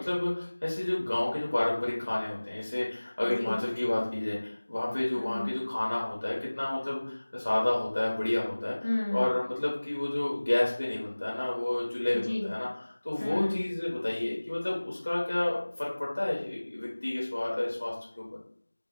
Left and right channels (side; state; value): both; inverted; correlation -1.00